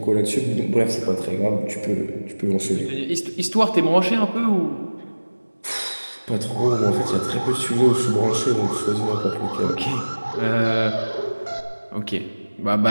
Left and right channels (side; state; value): both; inverted; correlation -1.00